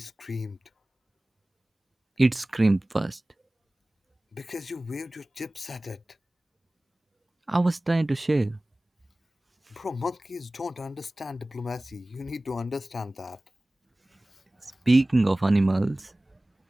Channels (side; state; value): both; normal; correlation 0.98